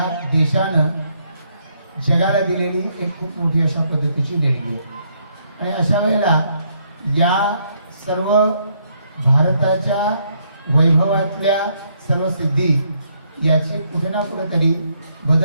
देशानं जगाला दिलेली एक खूप मोठी अशा पद्धतीची देणगी आहे। आणि अशा वेळेला या सर्व भारताच्या वैभवातल्या सर्व सिद्धी याचे कुठे ना कुठेतरी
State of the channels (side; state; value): both; inverted; correlation -0.72